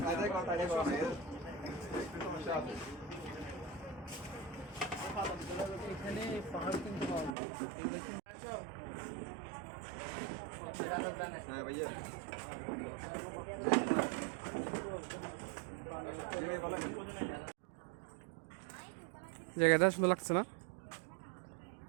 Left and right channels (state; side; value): drops out; left; at 7.4 s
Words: kontanya kok ya. এখানে পাহাড় কিন্তু পাওয়া যায়। হ্যাঁ ভাইয়া জায়গাটা সুন্দর লাগছে না?